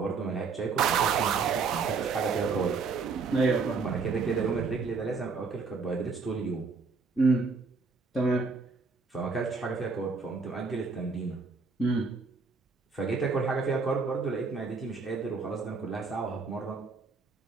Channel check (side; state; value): left; quieter; 4.6 dB